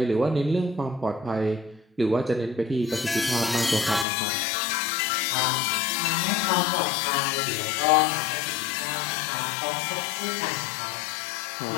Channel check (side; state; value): right; drops out; at 4.0 s